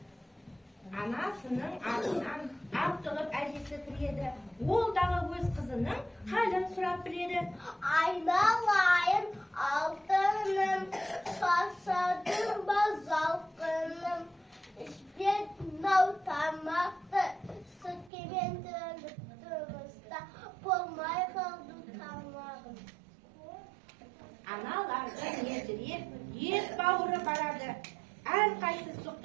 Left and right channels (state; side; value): drops out; left; at 18.1 s